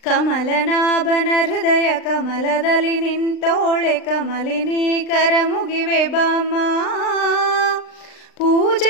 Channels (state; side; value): late; right; 39 ms